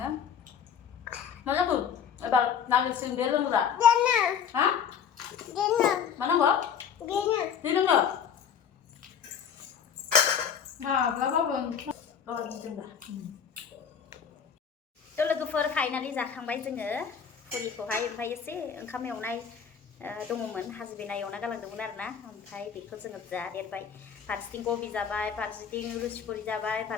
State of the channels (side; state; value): right; quieter; 7.5 dB